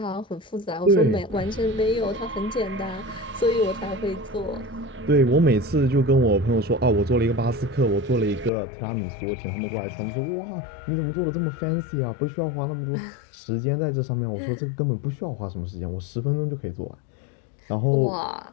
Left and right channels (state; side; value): drops out; right; at 8.5 s